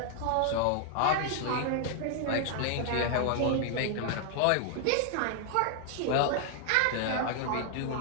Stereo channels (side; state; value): both; different; correlation 0.00